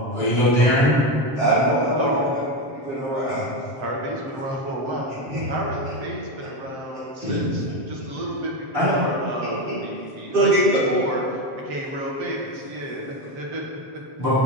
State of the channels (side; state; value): left; late; 7.5 ms